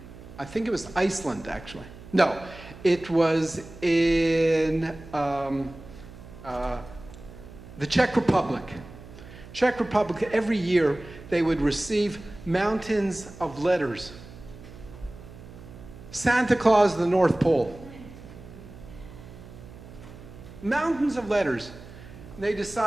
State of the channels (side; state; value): right; noise; hum, 17 dB below the sound